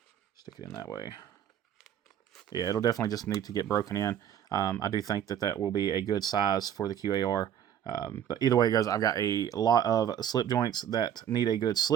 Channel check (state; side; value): quieter; left; 9.7 dB